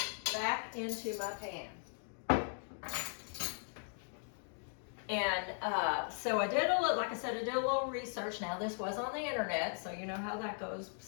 back into my pan. And so I did like I said, I did a little research. Now this was on the internet, so you know how that goes.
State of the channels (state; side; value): silent; right; 52 dB below the other